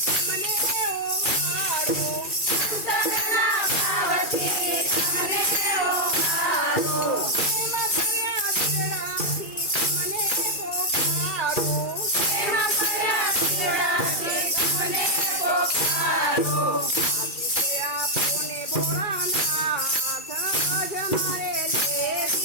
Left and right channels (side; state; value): right; late; 2.4 ms